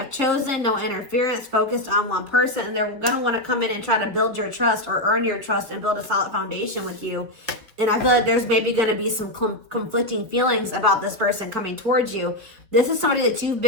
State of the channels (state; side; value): late; left; 4.1 ms